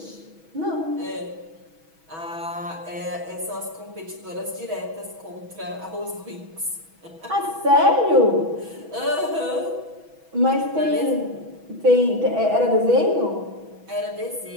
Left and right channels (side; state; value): left; late; 6.2 ms